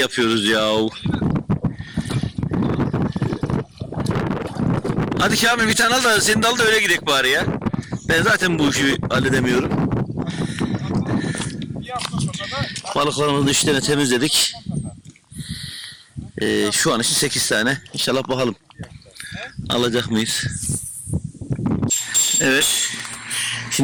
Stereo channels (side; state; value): both; identical; correlation 1.00